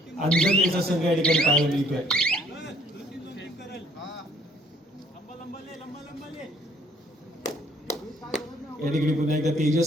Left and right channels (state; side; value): normal; both; correlation 0.62